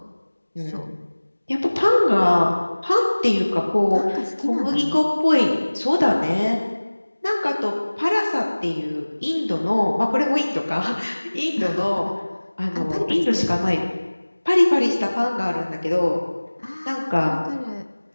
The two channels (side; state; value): both; inverted; correlation -1.00